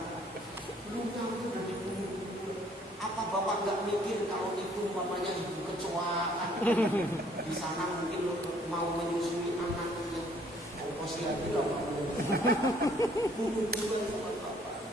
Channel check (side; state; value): both; normal; correlation 0.61